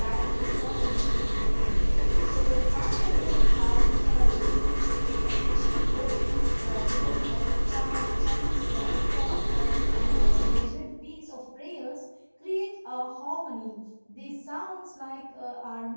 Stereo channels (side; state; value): both; inverted; correlation -1.00